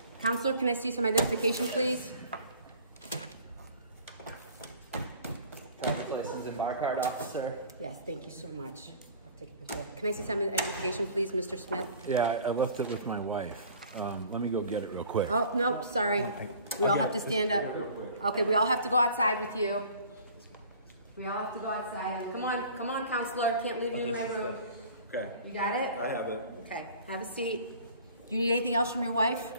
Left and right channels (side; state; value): both; inverted; correlation -0.48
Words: Counselor, can I see some identification, please? License and bar card, officer. Yes, thank you so much. I'll take a picture. Can I see some identification, please, Mr. Smith? Yeah, I left it with my wife. Let me go get it real quick. Oh, no, sorry. We all have to stand up. Okay, we all have to go outside with you. We all have to go outside. Come on, counselor. Can't leave you in my room. Okay. You got it? I have it. Okay, have a seat. Do you need anything else from your wife?